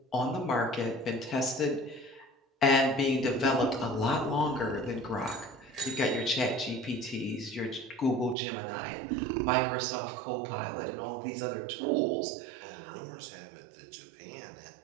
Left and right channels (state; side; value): drops out; left; at 8.3 s